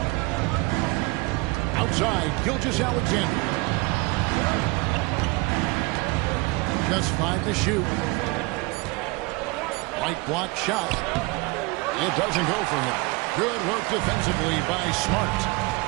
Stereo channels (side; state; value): left; quieter; 25.0 dB